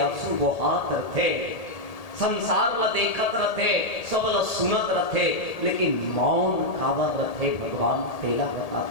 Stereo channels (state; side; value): late; right; 1.8 ms